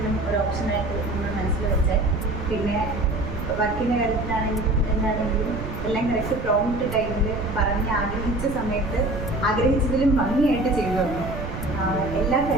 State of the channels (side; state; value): right; noise; rumble, 7 dB below the sound